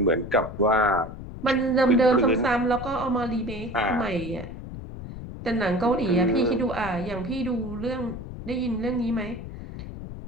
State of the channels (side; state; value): left; noise; rumble, 10 dB below the sound